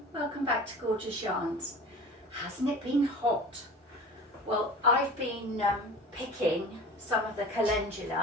welcome back to Gorgeous Yarns. Hasn't it been hot? Well, I've been picking some of the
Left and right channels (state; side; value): normal; both; correlation 0.38